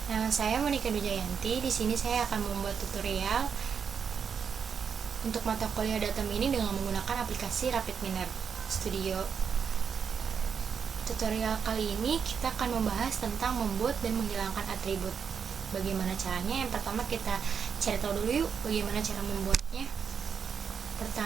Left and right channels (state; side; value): quieter; left; 6.7 dB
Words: Nama saya Monika Dujayanti. Di sini saya akan membuat tutorial untuk mata kuliah data mining dengan menggunakan aplikasi RapidMiner Studio. Tutorial kali ini kita akan membahas tentang membuat dan menghilangkan atribut. Bagaimana caranya? Yang pertama kita cari tahu dulu yuk bagaimana cara membuatnya.